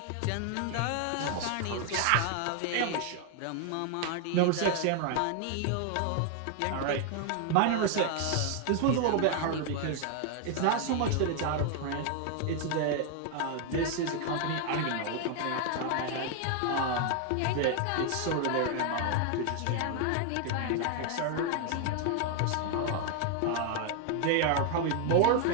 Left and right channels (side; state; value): both; different; correlation 0.00